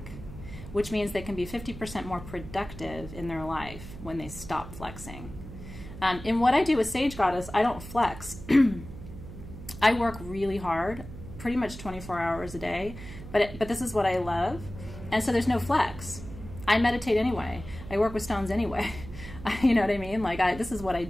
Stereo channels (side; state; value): right; noise; hum, 13 dB below the sound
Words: which means they can be 50% more productive in their life when they stop flexing. In what I do with Sage Goddess, I don't flex. I work really hard, pretty much 24 hours a day, but this is what I love, and so there's no flex. I meditate anyway. I work with stones anyway. You know what I mean? This is what I